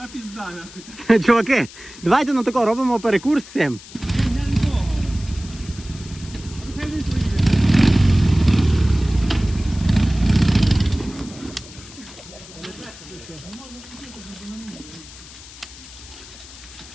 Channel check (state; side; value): noise; left; hiss, 18 dB below the sound